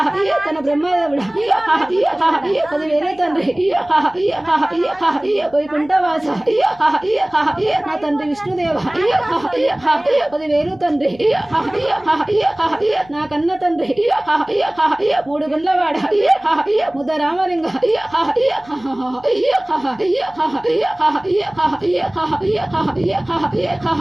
తన బ్రహ్మదేవుడు 10,000 తండ్రి వైకుంఠవాస నా తండ్రి విష్ణుదేవ 10,000 తండ్రి నా కన్న తండ్రి మూడు గుండ్లవాడ ముద్ద రామలింగ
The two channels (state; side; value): noise; left; hum, 25 dB below the sound